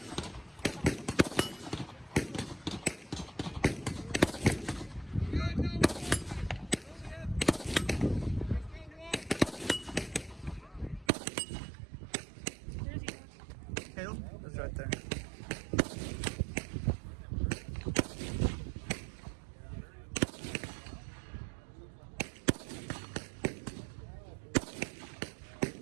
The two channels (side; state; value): left; drops out; at 11.1 s